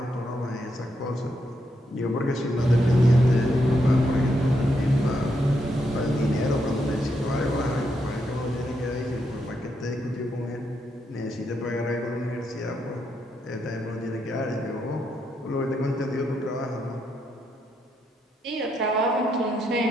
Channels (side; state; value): both; normal; correlation 0.80